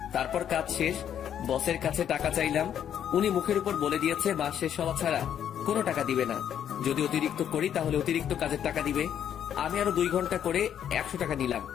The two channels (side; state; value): right; quieter; 9.5 dB